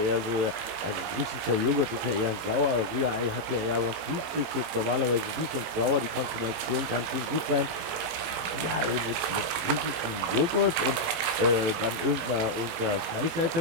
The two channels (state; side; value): late; left; 18 ms